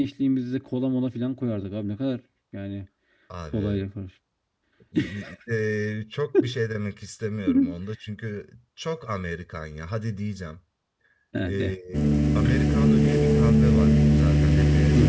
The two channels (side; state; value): both; identical; correlation 1.00